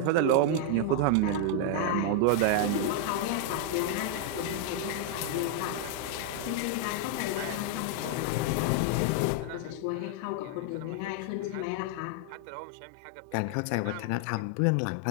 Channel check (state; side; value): different; both; correlation 0.00